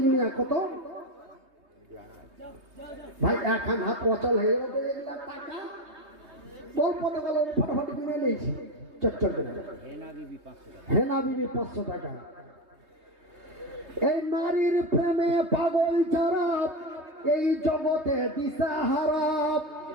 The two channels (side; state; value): left; late; 3.2 ms